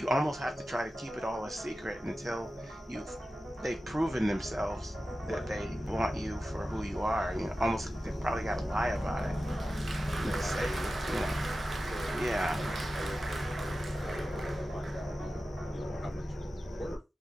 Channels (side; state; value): both; normal; correlation 0.94